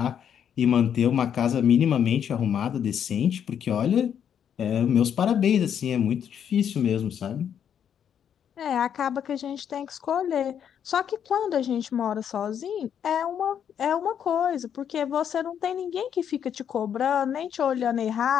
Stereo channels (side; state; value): right; quieter; 8.6 dB